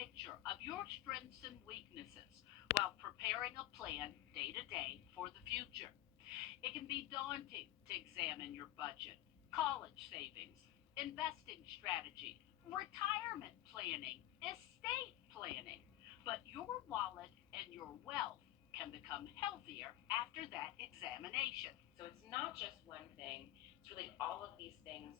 of your strengths and weaknesses while preparing a plan day to day for the future. It can be daunting to examine your budget, college savings, investing strategy, retirement planning, estate planning, but your wallet and your wealth can become healthier after that examination. So it's not just one thing, it's really all of these things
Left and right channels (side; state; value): right; quieter; 15.2 dB